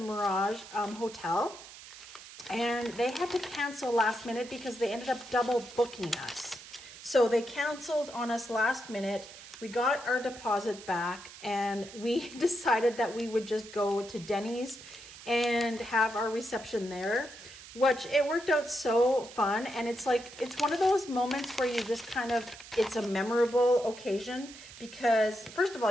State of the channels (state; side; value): noise; right; hiss, 16 dB below the sound